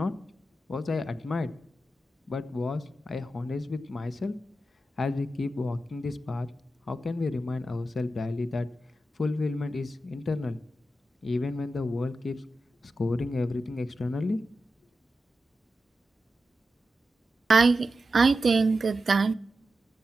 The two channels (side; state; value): both; normal; correlation 0.91